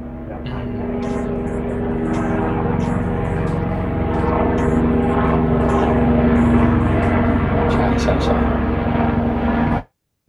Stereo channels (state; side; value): identical; both; correlation 1.00